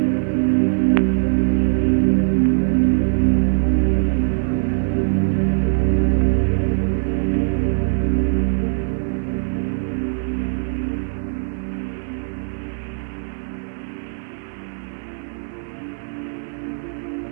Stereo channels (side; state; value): left; silent; digital silence